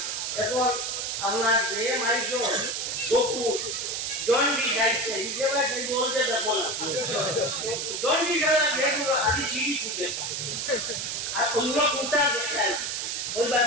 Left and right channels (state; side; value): noise; right; hiss, 2 dB below the sound